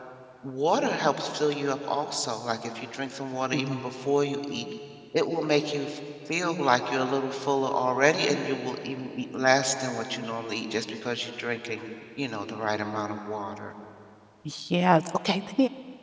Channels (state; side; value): identical; both; correlation 1.00